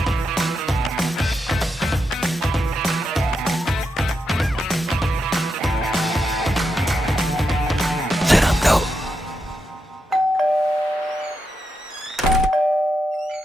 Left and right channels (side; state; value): both; normal; correlation 0.84